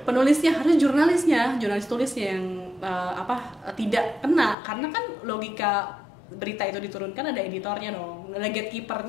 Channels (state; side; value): drops out; right; at 4.5 s